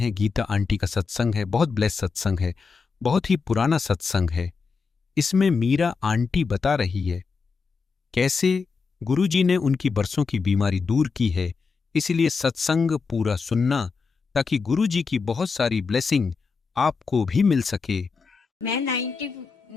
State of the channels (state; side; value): quieter; right; 4.9 dB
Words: गीता आंटी का सत्संग है। बहुत ब्लेस सत्संग है, बहुत ही पुराना सत्संग है। इसमें मीरा आंटी बता रही है कैसे गुरु जी ने उनकी बरसों की बीमारी दूर की है। इसलिए सत्संग पूरा सुनना ताकि गुरु जी की बहुत सारी ब्लेसिंग आपको भी मिल सके। मैं